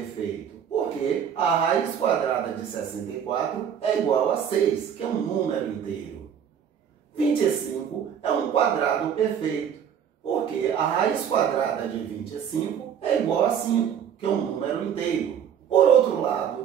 porque a raiz quadrada de 64 é igual a 6, que é um número inteiro. 25 é um quadrado perfeito, porque a raiz quadrada de 25 é igual a 5, que é um número inteiro. Por outro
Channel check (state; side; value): quieter; left; 8.4 dB